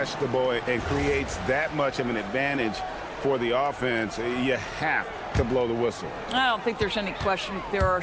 and creates that much of an advantage for the offense, you have to blow the whistle. I don't think there's any question. There are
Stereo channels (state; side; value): identical; both; correlation 1.00